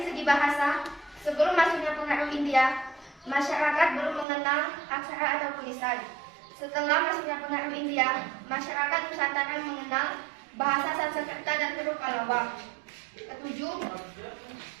segi bahasa. Sebelum masuknya pengaruh India, masyarakat belum mengenal aksara atau tulisan. Setelah masuknya pengaruh India, masyarakat Nusantara mengenal bahasa Sanskerta dan huruf Pallava. Ketujuh,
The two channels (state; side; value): drops out; left; at 4.2 s